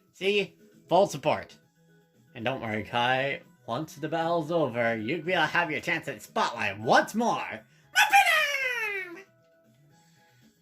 See? Full support. And don't worry, Kai. Once the battle's over, you'll be able to have your chance at the spotlight once more.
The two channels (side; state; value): both; identical; correlation 1.00